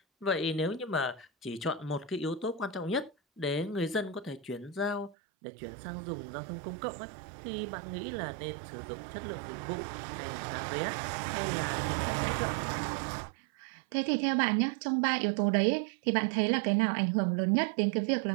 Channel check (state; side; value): drops out; left; at 5.2 s